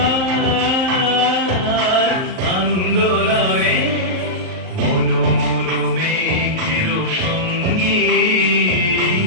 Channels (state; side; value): late; left; 38 ms